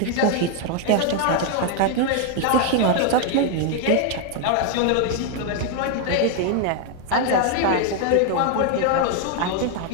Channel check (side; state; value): both; different; correlation 0.00